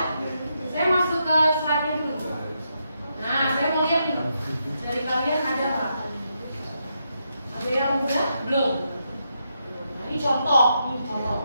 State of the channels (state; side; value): inverted; both; correlation -0.82